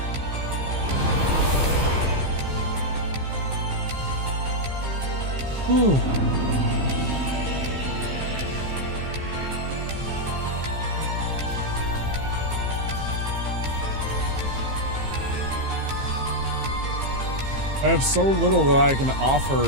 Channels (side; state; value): left; late; 15 ms